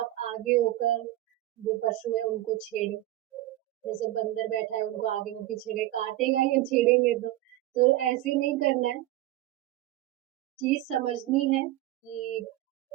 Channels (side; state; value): left; quieter; 15.4 dB